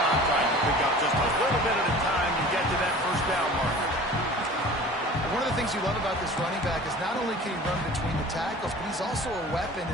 trying to pick up just a little bit at a time to get to that first down marker. One of the things you love about this running back is not only can he run between the tackles, but he's also a weapon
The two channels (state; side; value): normal; both; correlation 0.42